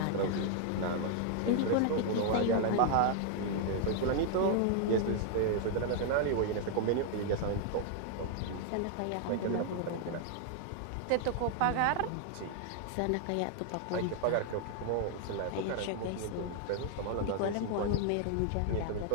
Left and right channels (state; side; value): different; both; correlation 0.00